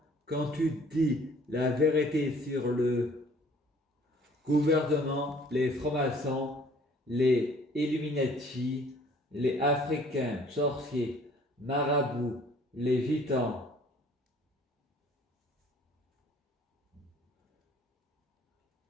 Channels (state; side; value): normal; both; correlation 0.55